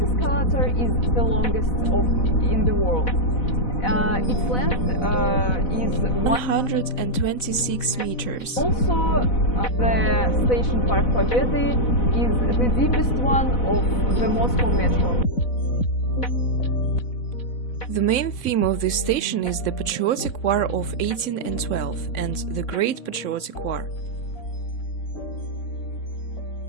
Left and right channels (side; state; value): right; late; 3.6 ms